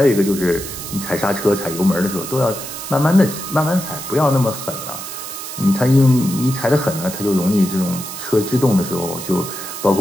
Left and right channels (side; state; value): right; noise; hiss, 9 dB below the sound